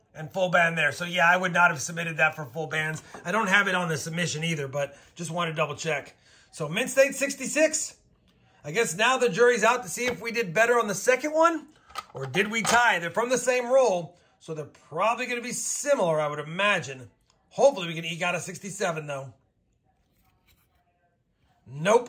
And full band there. So yeah, I would not have submitted that for full bands. I don't have it on the submission either, but just want to double check. So Mint State 66. I guess now the jury's out to see if we did better on the second one or did we tie. They're from the same roll, so they're probably going to be similar, I would imagine. Hopefully we can eke out a 67 though.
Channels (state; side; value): identical; both; correlation 1.00